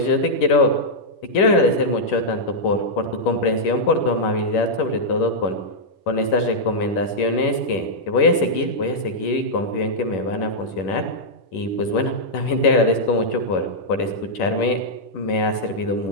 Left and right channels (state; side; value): late; right; 11 ms